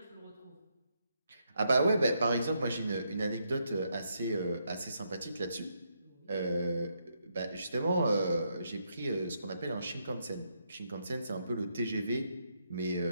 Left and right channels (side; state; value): both; inverted; correlation -0.78